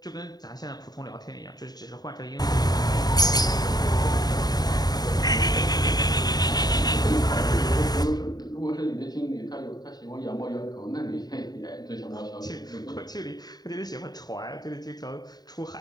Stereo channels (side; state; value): right; late; 0.19 ms